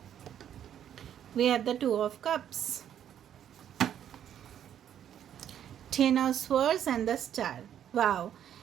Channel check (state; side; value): quieter; left; 9.9 dB